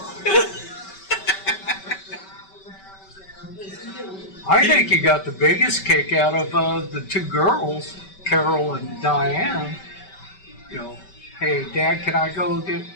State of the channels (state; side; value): late; right; 5.2 ms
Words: I think he got the biggest kick out of the two girls, Carol and Diane. You know, hey, Dad, can I go get?